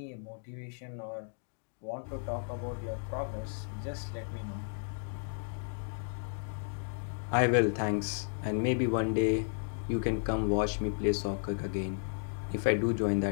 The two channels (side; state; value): right; silent; digital silence